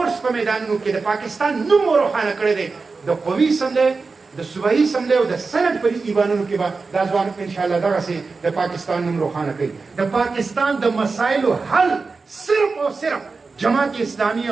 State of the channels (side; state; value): left; quieter; 4.3 dB